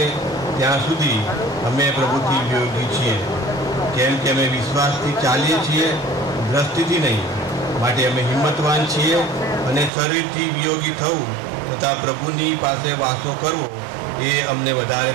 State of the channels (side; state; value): left; drops out; at 9.9 s